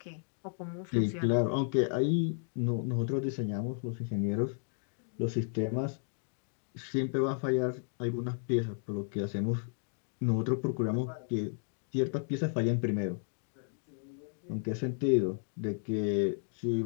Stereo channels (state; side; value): silent; right; 56 dB below the other